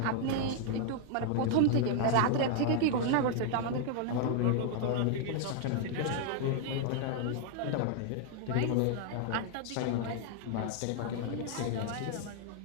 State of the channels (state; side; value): different; both; correlation 0.00